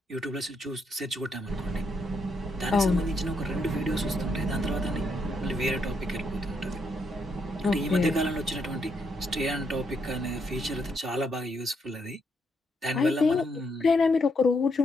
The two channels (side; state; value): both; normal; correlation 0.77